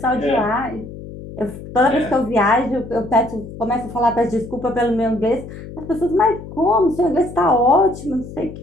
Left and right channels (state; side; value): noise; left; hum, 13 dB below the sound